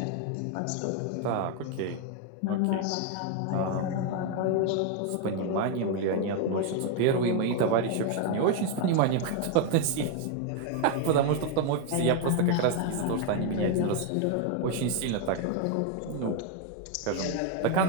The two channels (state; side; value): different; both; correlation 0.01